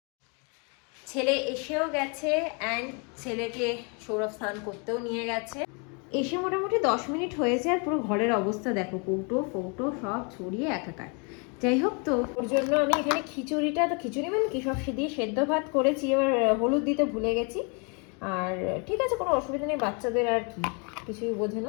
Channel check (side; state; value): right; quieter; 34.9 dB